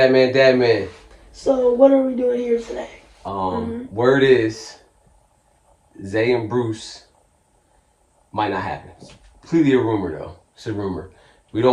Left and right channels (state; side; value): identical; both; correlation 1.00